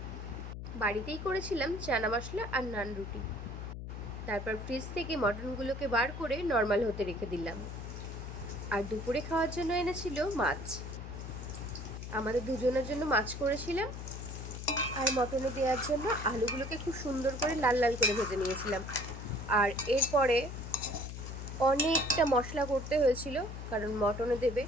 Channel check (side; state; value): left; noise; hum, 8 dB below the sound